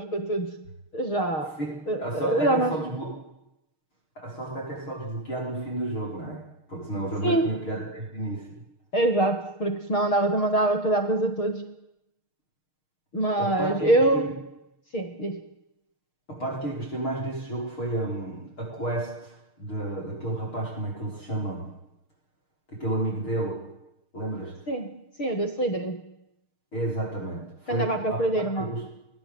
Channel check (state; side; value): late; right; 6.5 ms